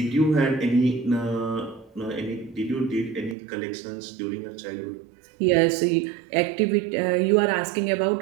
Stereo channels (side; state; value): left; drops out; at 3.4 s